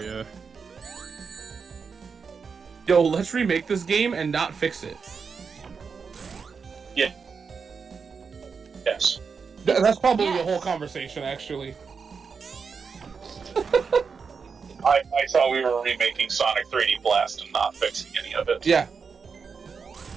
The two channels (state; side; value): quieter; left; 5.6 dB